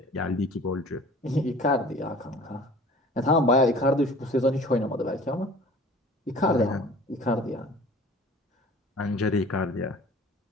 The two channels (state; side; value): normal; both; correlation 0.46